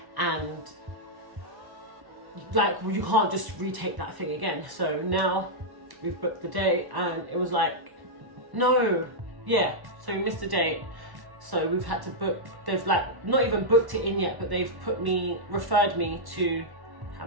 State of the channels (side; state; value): left; late; 1.1 ms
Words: and like you can't just retake that thing again. So now we've booked the date, and it was like, no, yeah, so we missed the date. So we've had to book, they've like not even booked it in yet, but they've referred me to